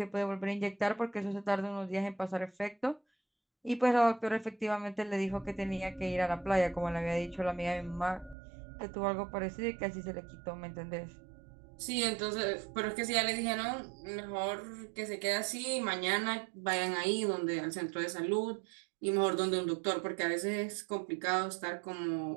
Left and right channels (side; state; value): left; drops out; at 8.3 s